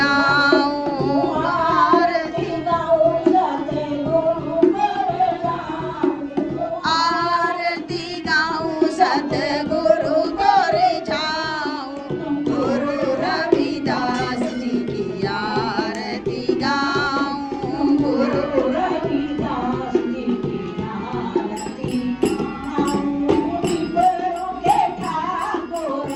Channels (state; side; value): identical; both; correlation 1.00